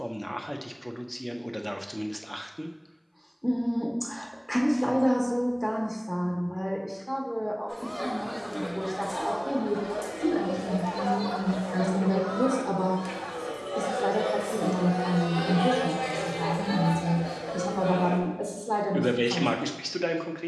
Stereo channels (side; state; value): both; identical; correlation 1.00